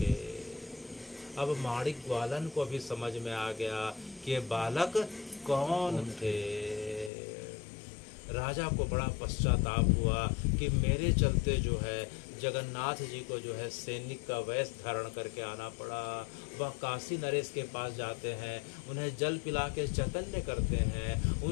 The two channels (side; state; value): right; drops out; at 7.1 s